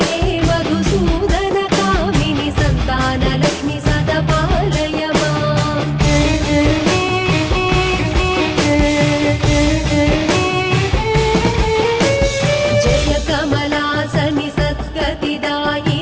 हे मधुसूदन कामिनि सन्तानलक्ष्मि सदा पालय माम्। कमलासनि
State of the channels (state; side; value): identical; both; correlation 1.00